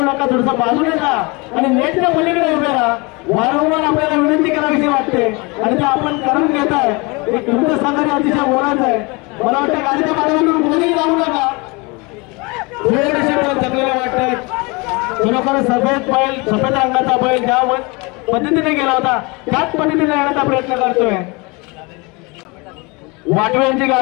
नका, थोडंसं बाजूने जा आणि नेटच्या पलीकडे उभे राहा। वारंवार आपल्याला विनंती करावीशी वाटते आणि ते आपण करून घेत आहे। एक तुमचं सहकार्य अतिशय मोलाचं आहे। मला वाटतं गाडीच्या पाठीमागून कोणीही जाऊ नका। थकलेले वाटत खरोखर सफेद रंगाचा बैल ज्या पद्धतीने गेला होता त्याच पद्धतीने येण्याचा प्रयत्न करतोय। वाटव्यांची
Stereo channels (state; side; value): quieter; right; 27.4 dB